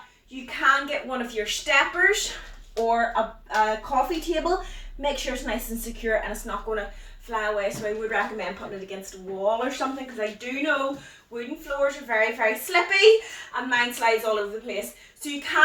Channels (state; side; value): identical; both; correlation 1.00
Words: you can get one of your steppers or a coffee table. Make sure it's nice and secure and it's not going to fly away. So I would recommend putting it against a wall or something, because I do know wooden floors are very, very slippy and mine slides all over the place. So you